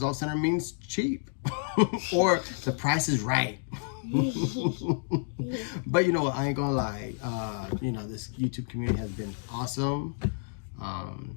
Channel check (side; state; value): right; silent; digital silence